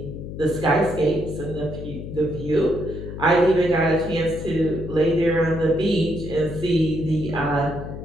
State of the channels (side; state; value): left; noise; hum, 9 dB below the sound